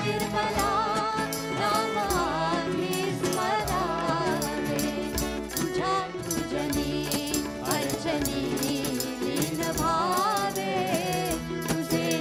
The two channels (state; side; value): identical; both; correlation 1.00